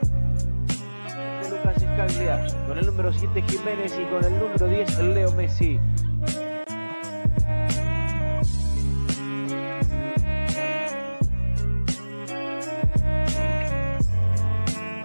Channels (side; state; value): both; inverted; correlation -1.00